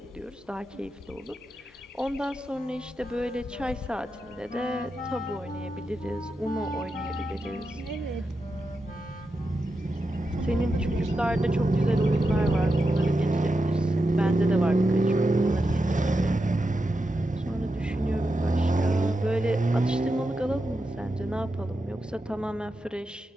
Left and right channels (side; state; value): both; normal; correlation 0.88